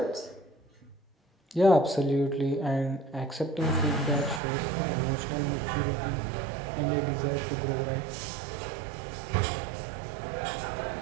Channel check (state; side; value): drops out; left; at 4.4 s